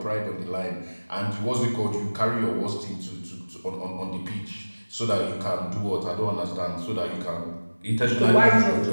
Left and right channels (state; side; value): inverted; both; correlation -1.00